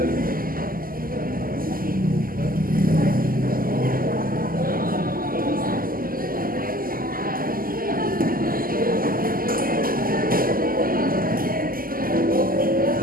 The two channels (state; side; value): late; left; 0.42 ms